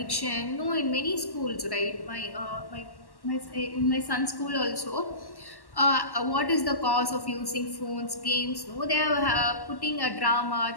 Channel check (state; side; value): late; right; 1.1 ms